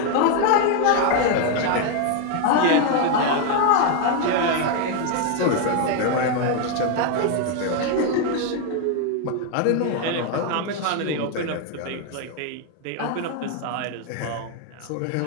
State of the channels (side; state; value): both; different; correlation 0.01